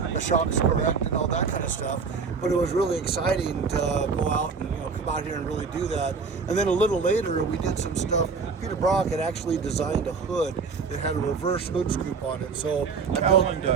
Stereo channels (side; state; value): left; quieter; 5.1 dB